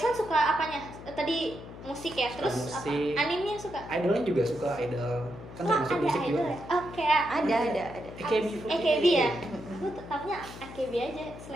suka apanya? Tadi musik ya, Suka terus musik. apa? Animenya suka? Idolnya juga suka idol. Kan Wah, termasuk ada musik idol juga. ya? Oh, kayak Ada. AKB ya? Aku tahunya AKB aja,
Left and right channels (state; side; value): noise; left; hum, 14 dB below the sound